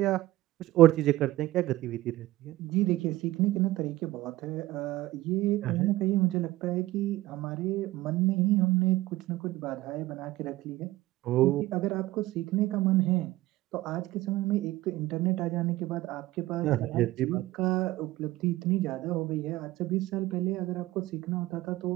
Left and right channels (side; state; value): left; quieter; 17.1 dB